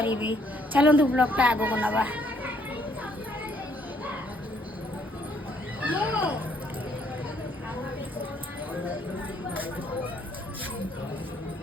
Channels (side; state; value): both; normal; correlation 0.67